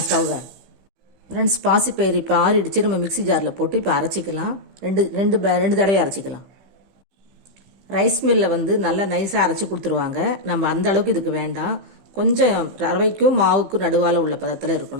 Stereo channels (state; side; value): late; left; 15 ms